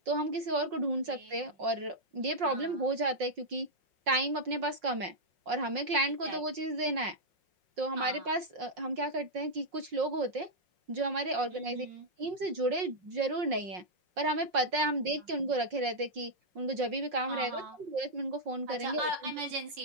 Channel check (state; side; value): late; left; 5.5 ms